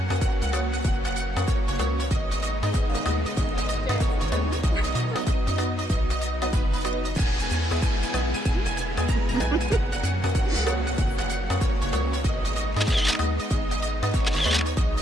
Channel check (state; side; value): normal; both; correlation 0.76